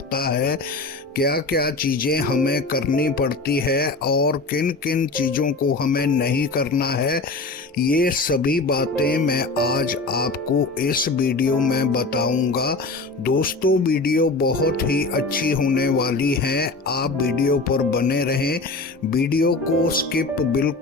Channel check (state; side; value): quieter; right; 3.4 dB